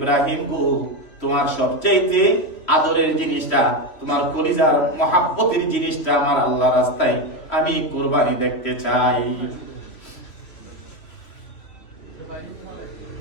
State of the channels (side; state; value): right; late; 3.0 ms